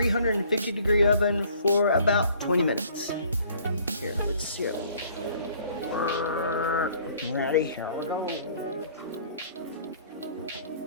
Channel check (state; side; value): inverted; both; correlation -0.56